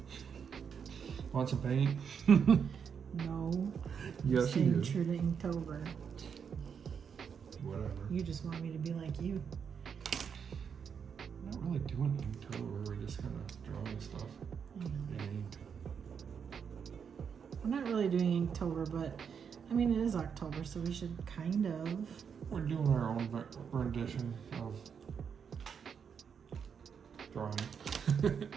Want some paint? No. Yes, you Staying do. true to Inktober. Whatever. You just want me to be like you. We're not really doing Inktober. We're just kind of drawing stuff. And We're not really doing Inktober, but I mean, it is October, so we should kind of. we're doing our own rendition of drawing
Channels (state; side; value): quieter; left; 6.9 dB